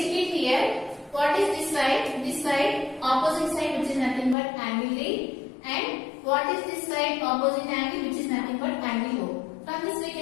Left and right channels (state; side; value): drops out; right; at 4.4 s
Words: here. What is this side? This side, opposite side, which is nothing but angle D. And what is this side? Opposite angle, which is nothing but angle O. From this we